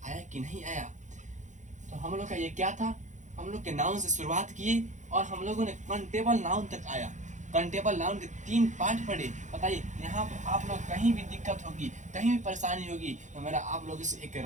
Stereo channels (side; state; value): left; late; 0.35 ms